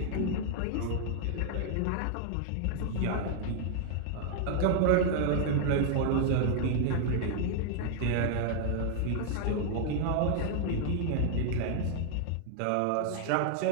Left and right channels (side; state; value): both; different; correlation -0.01